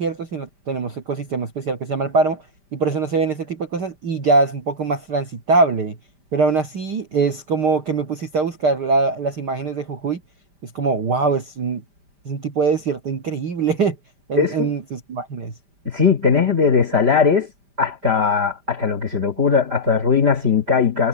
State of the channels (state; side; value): late; left; 5.1 ms